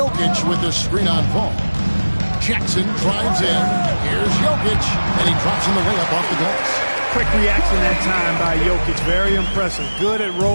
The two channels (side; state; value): both; inverted; correlation -1.00